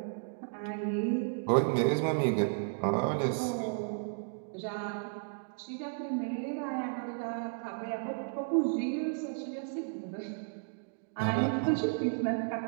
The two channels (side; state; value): left; silent; digital silence